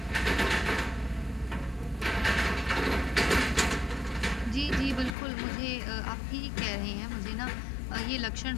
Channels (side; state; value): right; drops out; at 5.2 s